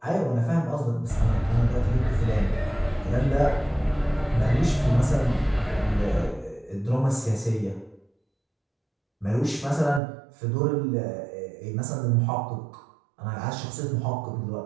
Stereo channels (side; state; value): left; drops out; at 10.0 s